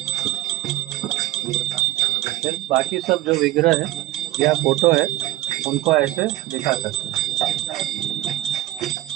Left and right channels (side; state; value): left; quieter; 16.2 dB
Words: फिर बाकी सब जो विग्रह है या फोटो है उनको ऐसे दिखा सकते हैं।